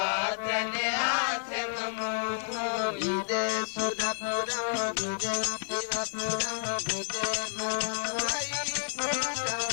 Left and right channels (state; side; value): silent; right; digital silence